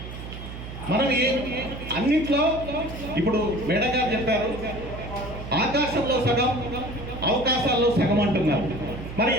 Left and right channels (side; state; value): right; noise; hum, 10 dB below the sound